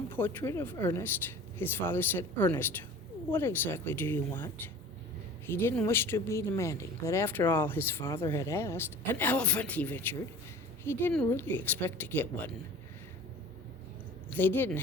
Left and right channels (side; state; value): both; normal; correlation 0.42